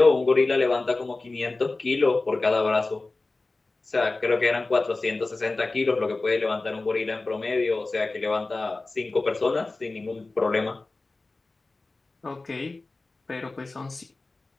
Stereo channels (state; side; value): quieter; right; 3.4 dB